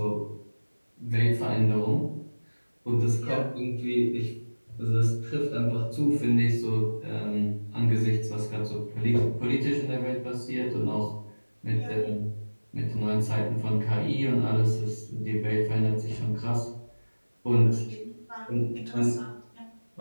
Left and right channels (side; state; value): both; inverted; correlation -1.00